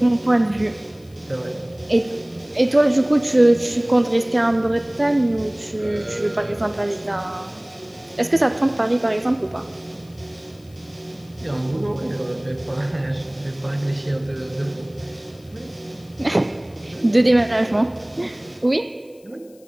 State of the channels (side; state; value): left; noise; hiss, 30 dB below the sound